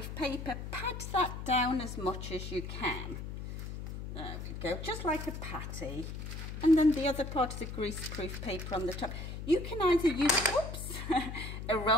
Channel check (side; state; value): left; noise; hum, 7 dB below the sound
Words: paper. Pat that down as much as you can. There we go, just like a patty. And then the other part of the grease-proof paper on the top. You can either use, oops, a